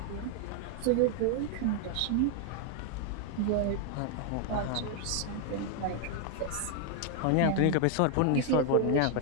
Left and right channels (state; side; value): different; both; correlation 0.00